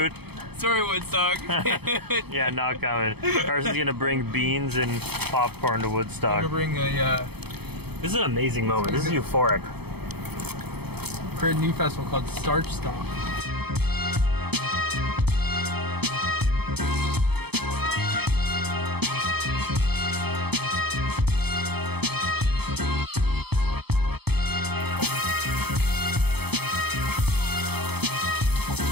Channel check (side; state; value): left; late; 0.97 ms